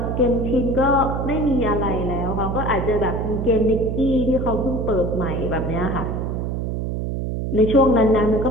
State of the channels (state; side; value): noise; right; hum, 2 dB below the sound